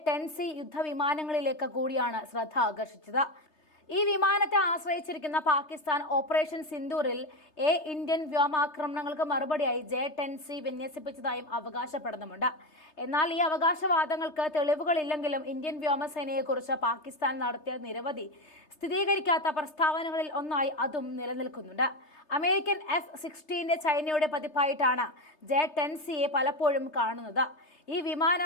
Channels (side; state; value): right; late; 3.3 ms